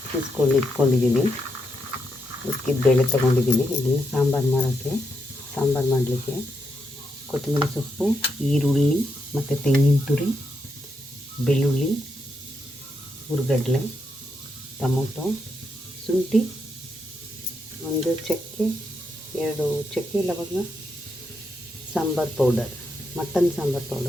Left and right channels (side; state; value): both; normal; correlation 0.82